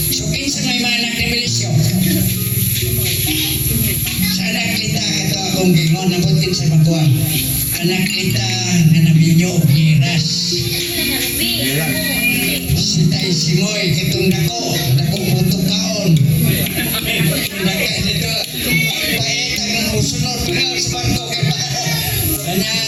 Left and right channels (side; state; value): both; identical; correlation 1.00